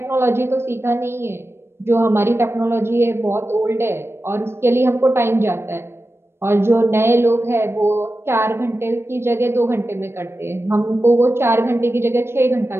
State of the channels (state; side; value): late; left; 0.12 ms